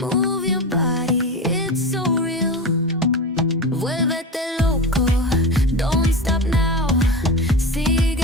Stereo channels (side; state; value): both; normal; correlation 0.24